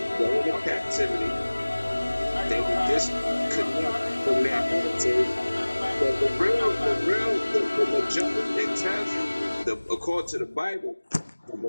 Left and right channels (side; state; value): both; inverted; correlation -1.00